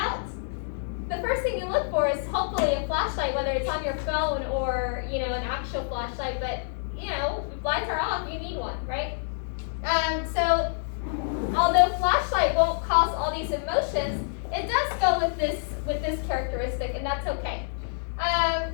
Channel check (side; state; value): right; silent; digital silence